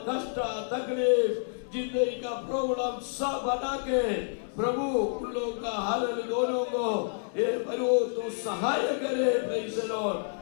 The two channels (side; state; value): right; silent; 57 dB below the other